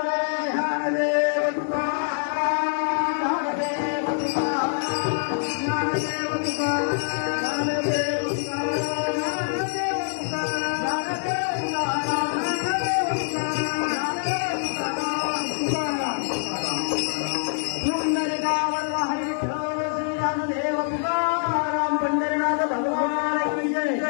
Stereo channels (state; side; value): silent; right; digital silence